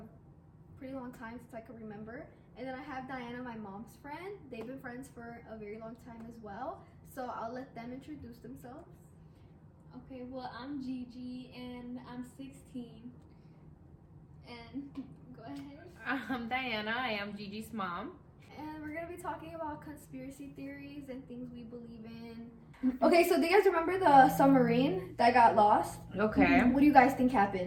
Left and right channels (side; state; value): both; identical; correlation 1.00